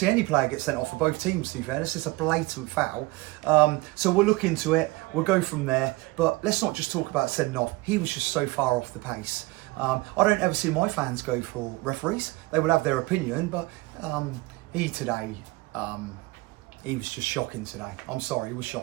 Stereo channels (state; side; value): quieter; left; 22.1 dB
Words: any player get sent off for both teams, to be fair. This is a blatant foul. So we'll look into it. We'll go from there. But let's not just talk about sending off. He was just so far off the pace. I don't ever see my fans go for referees. They will have their opinion, but he today, he was just shocking today. I'm sorry, he was